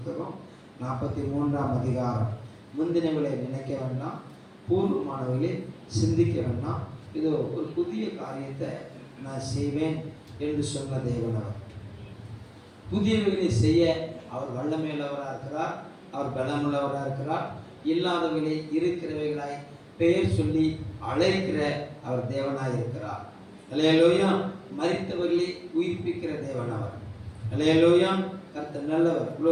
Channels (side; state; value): both; identical; correlation 1.00